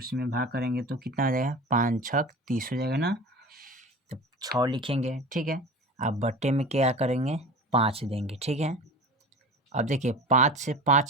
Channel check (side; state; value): both; normal; correlation 0.35